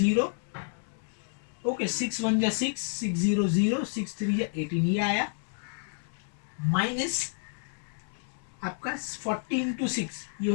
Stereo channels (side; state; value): right; silent; digital silence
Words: ओके 6 1 जा 6, 600, 6 3 जा 18, ये आया माइनस आपका 14 to 6, ये